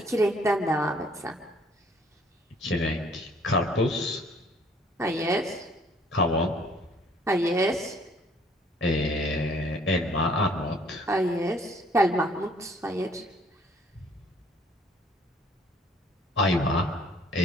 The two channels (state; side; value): normal; both; correlation 0.60